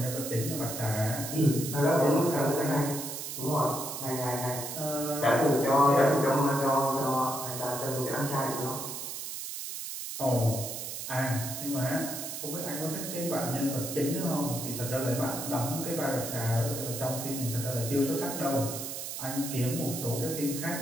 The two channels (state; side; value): noise; right; hiss, 6 dB below the sound